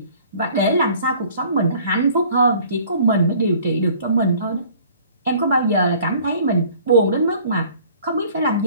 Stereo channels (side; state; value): both; inverted; correlation -0.52